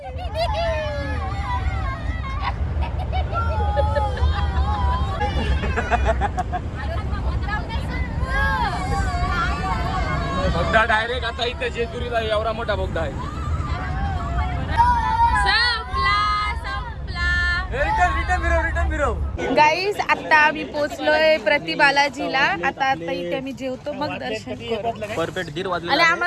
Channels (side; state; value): both; identical; correlation 1.00